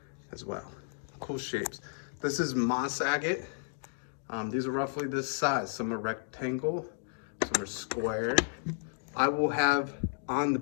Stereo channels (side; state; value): right; silent; digital silence